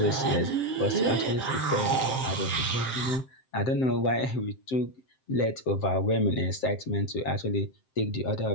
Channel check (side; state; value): right; late; 7.7 ms